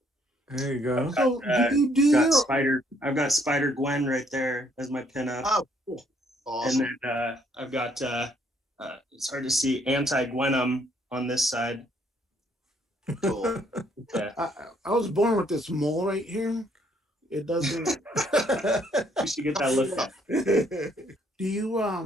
There you go. So I've got Spider Gwen right there as my pinup. Oh, cool. Awesome. And then I've got it's hard to see Anti-Venom on this side. Cool. I was born with this mole right here. It doesn't. You should get that looked at. Do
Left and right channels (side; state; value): both; normal; correlation 0.67